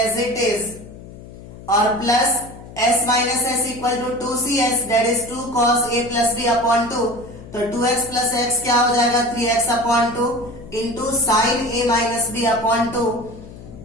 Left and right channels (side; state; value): left; noise; hum, 16 dB below the sound